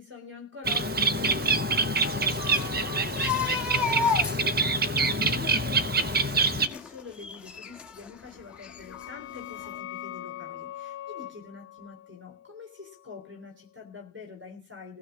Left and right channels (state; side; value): normal; both; correlation 0.00